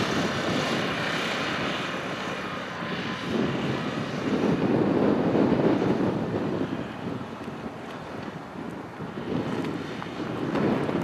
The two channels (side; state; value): both; identical; correlation 1.00